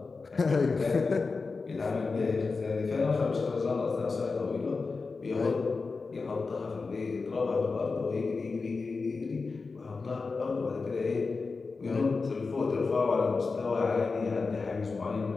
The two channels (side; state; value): right; quieter; 4.3 dB